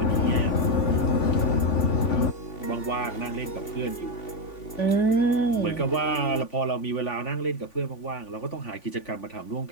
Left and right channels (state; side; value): late; right; 3.5 ms